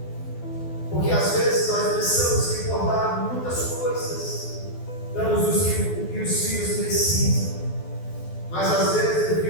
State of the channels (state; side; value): late; right; 12 ms